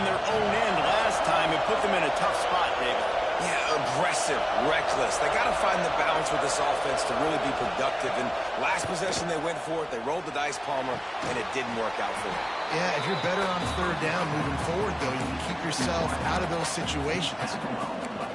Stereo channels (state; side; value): identical; both; correlation 1.00